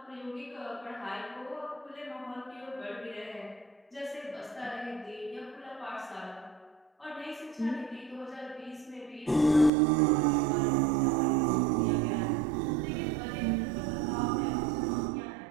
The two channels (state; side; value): drops out; left; at 9.7 s